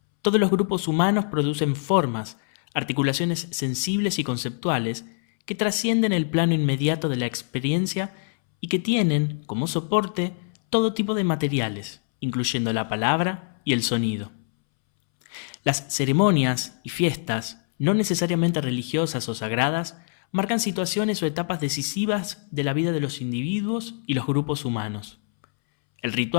Todos los grupos humanos producen formas, articulaciones sensibles y conceptuales que trascienden el plano inmediato de la experiencia y que tienen, como soporte, todo tipo de materiales, incluyendo la palabra y el sonido. Las ceremonias y fiestas, no necesariamente religiosas o sagradas, marcan situaciones o etapas decisivas de la vida de los individuos y los grupos humanos. El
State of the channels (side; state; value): right; silent; 62 dB below the other